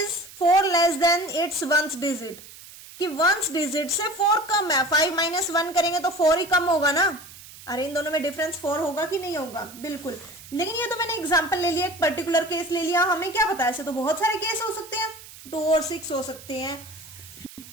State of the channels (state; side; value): noise; right; hiss, 18 dB below the sound